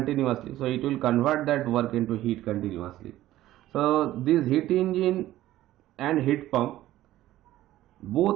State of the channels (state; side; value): quieter; left; 14.7 dB